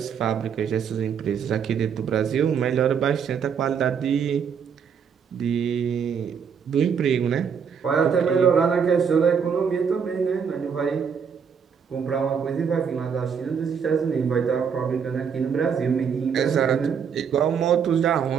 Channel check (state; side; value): quieter; left; 6.9 dB